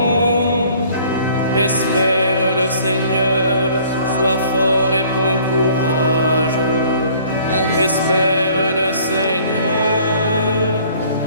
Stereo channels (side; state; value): both; inverted; correlation -0.55